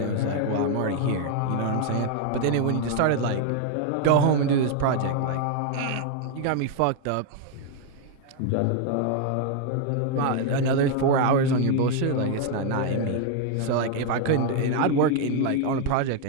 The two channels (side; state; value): both; different; correlation 0.00